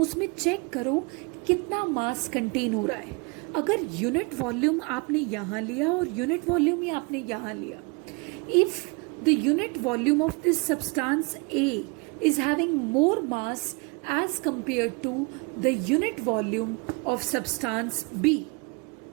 check करो कितना मास contain हो रहा है. अगर unit volume आपने यहाँ लिया और यूनिट वॉल्यूम ही आपने यहाँ लिया, if the unit volume of this substance A is having more mass as compared to the unit volume of substance B,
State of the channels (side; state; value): left; quieter; 30.6 dB